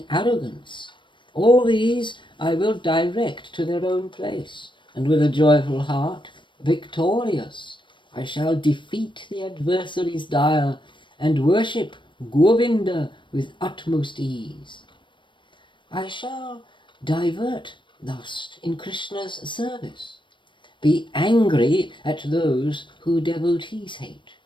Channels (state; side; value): late; right; 0.23 ms